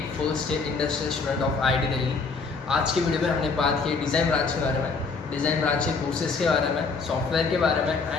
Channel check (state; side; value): quieter; right; 4.5 dB